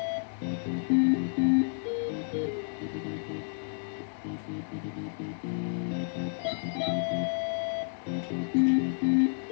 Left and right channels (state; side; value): silent; right; 57 dB below the other